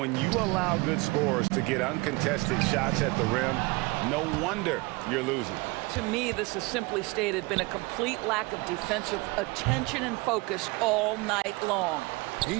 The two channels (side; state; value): left; quieter; 24.9 dB